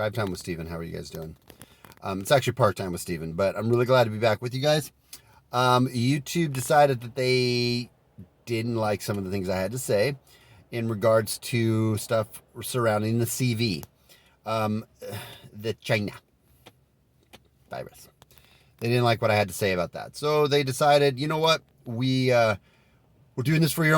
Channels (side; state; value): both; identical; correlation 1.00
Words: Time with Steven. How are you guys doing? It's actually Part Time with Steven, but I'm really glad to be back with you guys. YouTube decided that they didn't like some of the things I had to say in regards to stuff surrounding the CV, the China virus. They didn't like what I had to say about that. So they decided, you know what? We're doing this for your